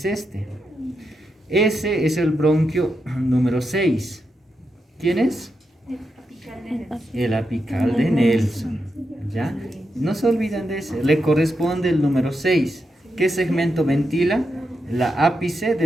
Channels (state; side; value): normal; both; correlation 0.85